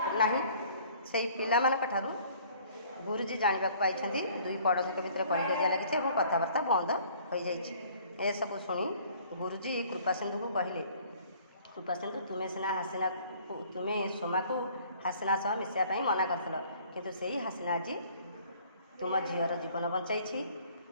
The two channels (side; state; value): both; inverted; correlation -0.55